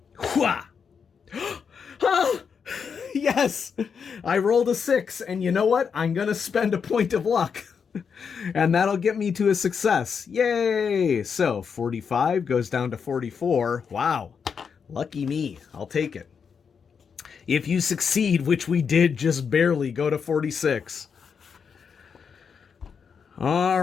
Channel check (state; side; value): quieter; right; 6.4 dB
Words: Yes, I rolled a 6. And you know what? I'm going to spend a point of luck. And that'll get me to a success. Yay. So 45 goes down to 44. Wow. Lucky me. I'll take it. If you succeed, which we did just barely, go to 46. All